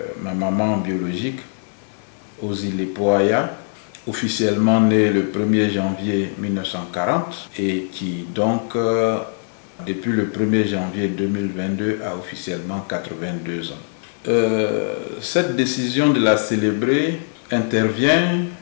ma maman biologique, Ozi Lepo Aya, officiellement née le 1er janvier 1940 et qui donc depuis le 1er janvier 2022 a officiellement 82 ans. Cette décision de la célébrer intervient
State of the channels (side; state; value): right; silent; digital silence